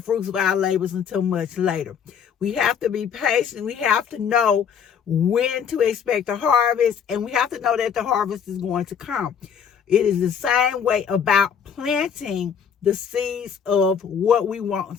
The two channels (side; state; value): right; quieter; 7.5 dB